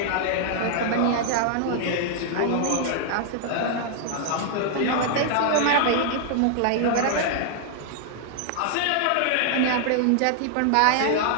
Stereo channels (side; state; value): both; different; correlation -0.01